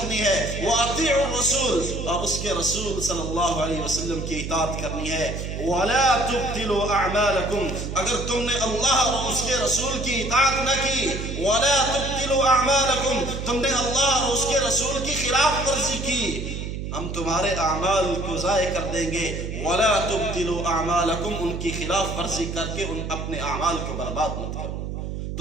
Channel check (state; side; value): noise; right; hum, 5 dB below the sound